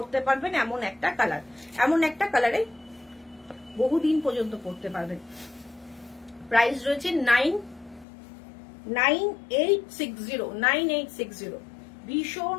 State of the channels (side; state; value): right; drops out; at 8.1 s